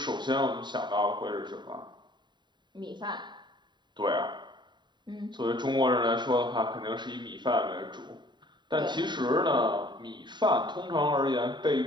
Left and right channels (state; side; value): late; left; 0.22 ms